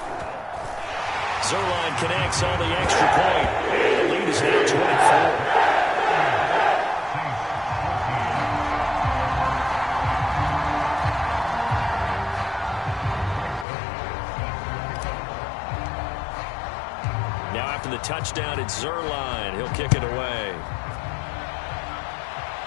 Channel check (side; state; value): right; drops out; at 13.7 s